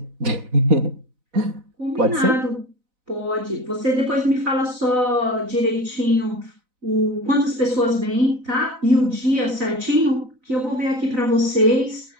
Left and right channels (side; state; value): left; late; 4.0 ms